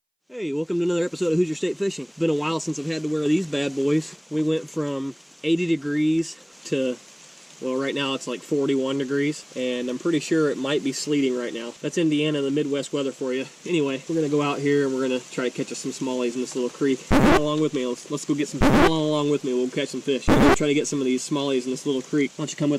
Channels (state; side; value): identical; both; correlation 1.00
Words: Hey, welcome to another episode of Hoosier State Fishing. It's been a while since I've had to wear these bad boys. We went from 80 degrees to, well, right now it's like 41 degrees, and I'm pretty sure it might be sleeting right now. That's Indiana, the Midwest weather for you. Anyway, we're gonna go out here and we're gonna try to catch us some smallies in this little creek. Come along with me. Let's go get some. Come along with me. We'll catch some fish. We're gonna try to get some of these smallies in this little creek. Why don't you come